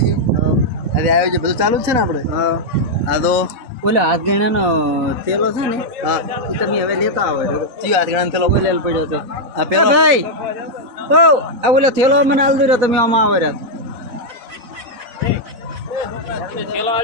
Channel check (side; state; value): left; late; 4.0 ms